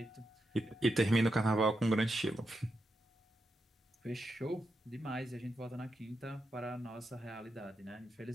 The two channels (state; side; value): normal; both; correlation 0.85